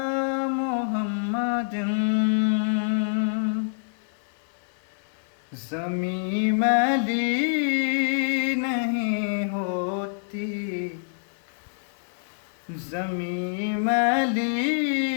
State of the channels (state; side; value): silent; right; digital silence